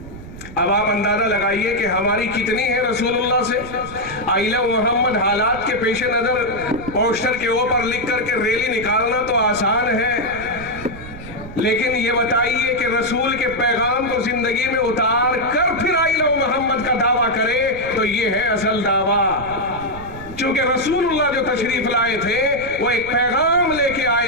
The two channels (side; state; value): right; noise; rumble, 14 dB below the sound